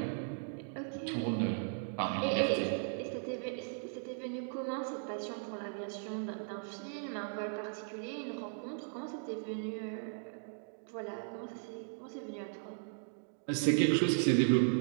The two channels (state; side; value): silent; left; digital silence